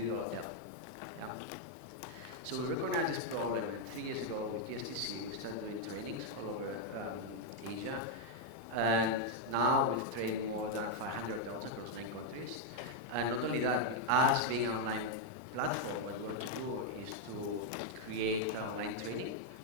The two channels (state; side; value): late; left; 2.0 ms